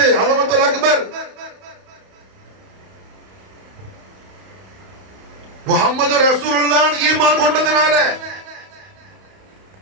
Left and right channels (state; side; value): late; left; 31 ms